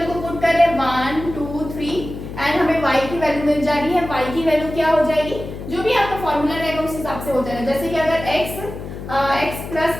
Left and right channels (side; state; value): left; noise; hum, 10 dB below the sound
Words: को पुट कर रहे हैं 1 2 3 एंड हमें y की वैल्यू मिल जा रही है। y की वैल्यू क्या हो जाएगी, जो भी आपका फॉर्मूला रहेगा उस हिसाब से हो जाएगा। जैसे कि अगर x प्लस